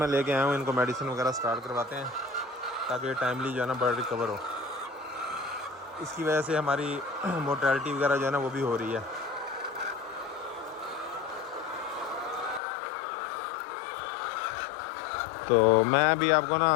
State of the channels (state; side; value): drops out; right; at 12.6 s